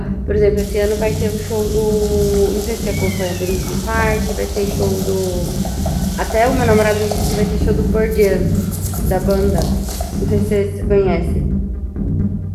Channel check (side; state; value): both; identical; correlation 1.00